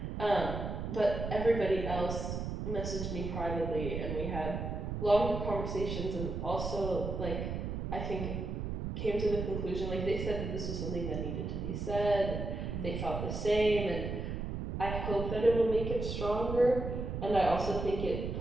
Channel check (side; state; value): right; noise; rumble, 4 dB below the sound